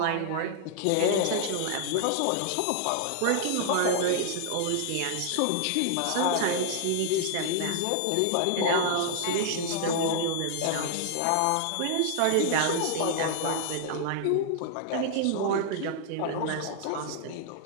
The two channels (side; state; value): both; different; correlation 0.00